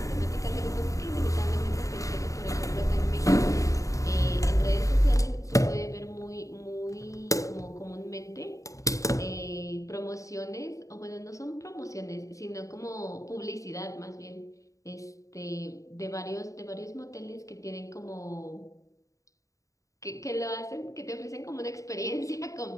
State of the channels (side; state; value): right; late; 0.16 ms